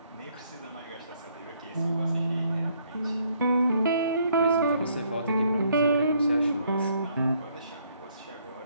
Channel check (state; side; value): inverted; both; correlation -0.68